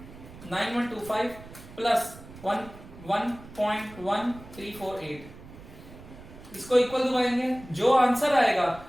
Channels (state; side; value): noise; right; rumble, 18 dB below the sound